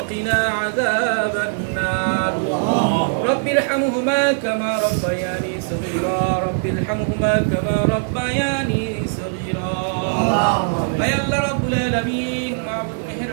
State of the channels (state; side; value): silent; left; 65 dB below the other